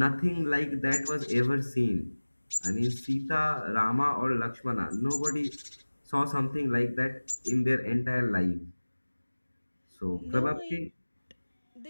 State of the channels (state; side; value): inverted; both; correlation -1.00